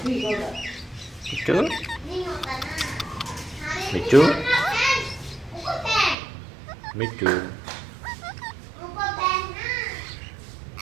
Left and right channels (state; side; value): drops out; left; at 6.2 s